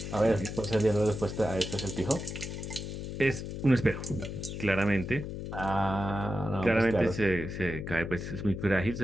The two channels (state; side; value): noise; left; hum, 7 dB below the sound